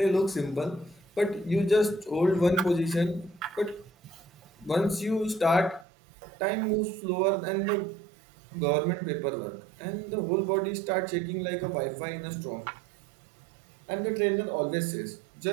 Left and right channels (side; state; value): left; drops out; at 5.9 s